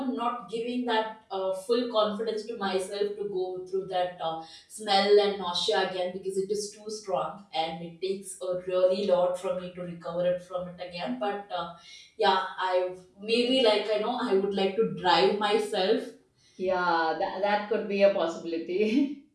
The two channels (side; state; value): both; identical; correlation 1.00